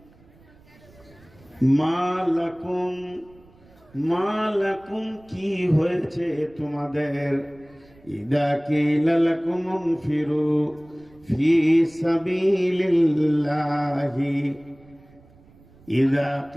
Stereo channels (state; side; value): noise; right; rumble, 27 dB below the sound